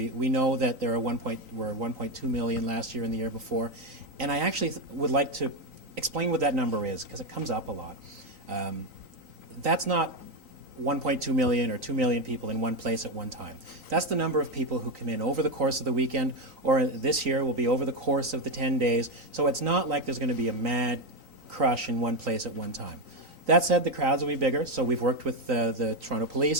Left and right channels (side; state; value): left; late; 3.9 ms